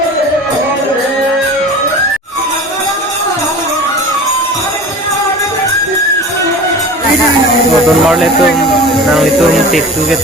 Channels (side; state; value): both; normal; correlation 0.37